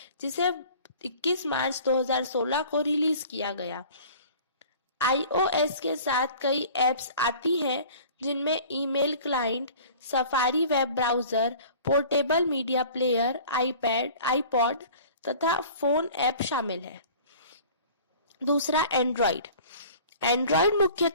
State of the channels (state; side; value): inverted; both; correlation -0.45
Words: जिसे 21 मार्च 2016 को रिलीज किया गया। iOS के साथ कई एप्स आती हैं जिनमें email client, safari web browser, portable media player, iPad, iPod तथा फोन ऐप शामिल है। दूसरा, एंड्रॉइड। एंड्रॉइड